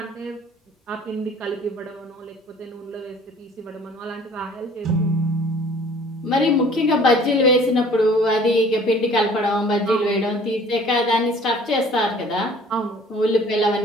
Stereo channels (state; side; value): normal; both; correlation 0.52